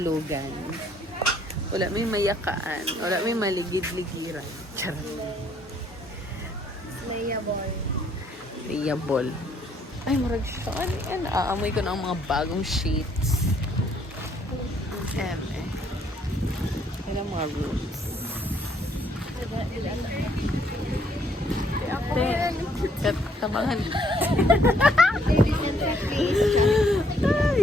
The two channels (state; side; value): normal; both; correlation 0.67